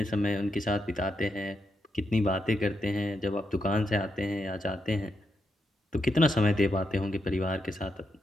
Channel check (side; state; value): both; normal; correlation 0.83